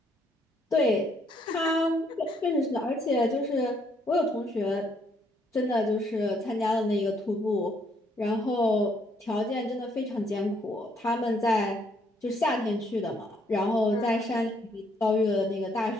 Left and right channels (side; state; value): both; normal; correlation 0.69